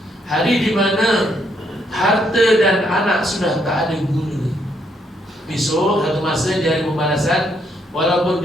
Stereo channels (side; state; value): both; normal; correlation 0.73